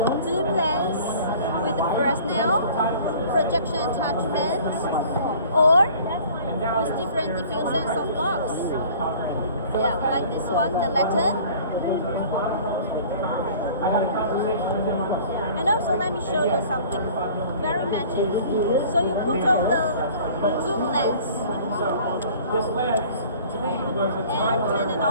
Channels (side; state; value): both; inverted; correlation -0.48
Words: zoom lens with the Fresnel, projection attachment, or with different diffusion softbox. Yeah, like this one, the lantern. And also, let me show you something very magic. So you put on the zoom lens and turn it